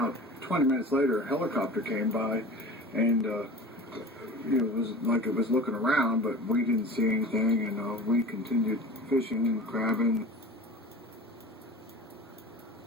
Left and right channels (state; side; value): normal; both; correlation 0.37